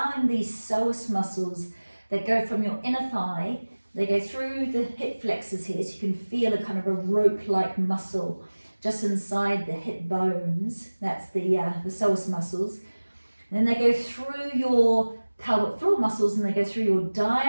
these psoas muscles that go from your inner thigh, they go through the hip flexors here, so you can feel a kind of a rope-like muscle just inside the hip bones. That's the psoas muscles. And then they go through your pelvic floor muscles and they go through your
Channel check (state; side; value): inverted; both; correlation -1.00